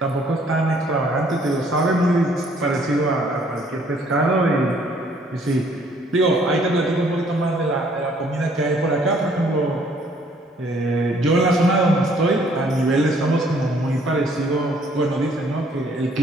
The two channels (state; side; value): normal; both; correlation 0.62